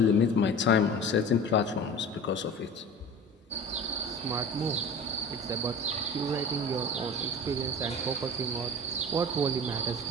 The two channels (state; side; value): normal; both; correlation 0.36